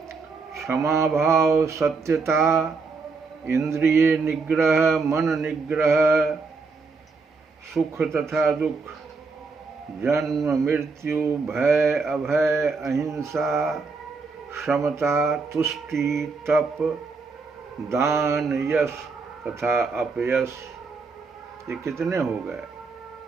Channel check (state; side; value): quieter; left; 4.4 dB